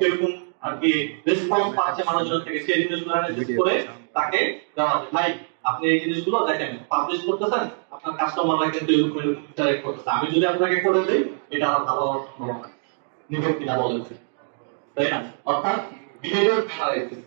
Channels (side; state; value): left; silent; 63 dB below the other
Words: আর কি রেসপন্স পাচ্ছে মানুষজন থেকে, সেই জিনিসগুলো অ্যানালাইসিস করে তাকে দেওয়া যায়। ভাই আপনি এই জিনিসগুলো দেখেন, পাবলিশ করতেছেন, আপনার কাস্টমাররা কিন্তু এরকম এরকম ইন্টারেক্ট করতেছে, আমি যদি আপনাকে করে দেই এটা আরো ভালো নিবেন কিনা বলেন, তাই না? অর্থাৎ বিহেভিয়ার অ্যানালাইসিস।